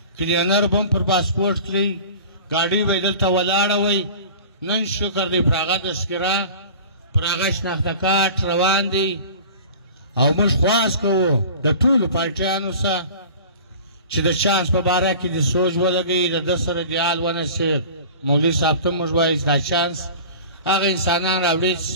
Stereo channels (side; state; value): both; inverted; correlation -0.40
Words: کلینر به هم پر پاسپورټ کړي ګاډۍ به یې دلته ولاړه وی نن شکر دی پر هغه تذکره پر هغه شناخته کارت روان دی او موږ خواست کوو د ټولو پارټیانو سره چې د چانس په باره کې د سوچ ولګوي د ده سره دیال ونسي مولوي صاحب ته موږ وایو دا چانس هغه انسانان راوړي چې